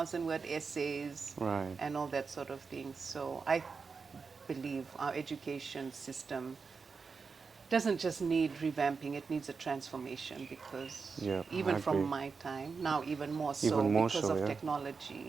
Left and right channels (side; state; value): left; quieter; 5.0 dB